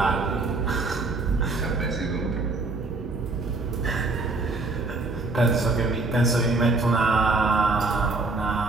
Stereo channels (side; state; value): left; quieter; 3.4 dB